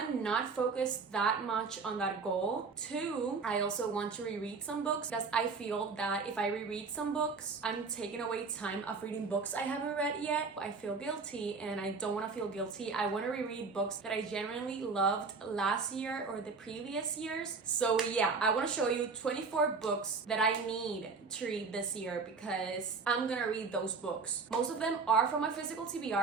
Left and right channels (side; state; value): left; quieter; 4.7 dB